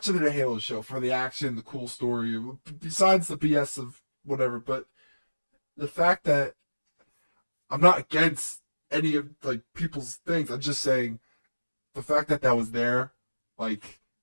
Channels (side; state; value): both; inverted; correlation -1.00